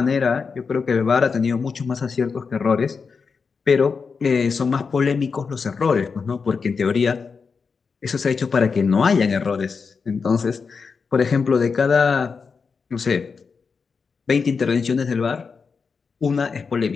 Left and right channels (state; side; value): quieter; right; 5.3 dB